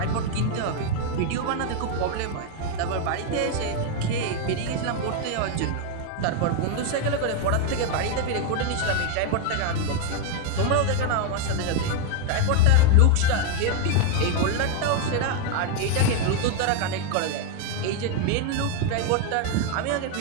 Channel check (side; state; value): both; different; correlation 0.00